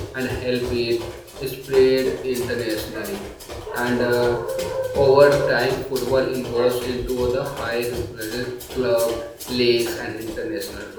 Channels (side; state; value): both; identical; correlation 1.00